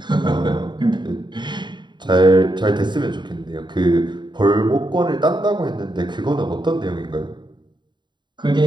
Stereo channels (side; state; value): left; late; 0.22 ms